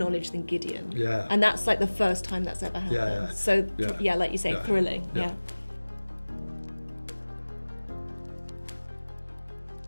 than Gideon. Yeah. And that's like the first time that's ever happened. Yeah. So, like you say, thrilling. Yeah.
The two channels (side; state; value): both; inverted; correlation -1.00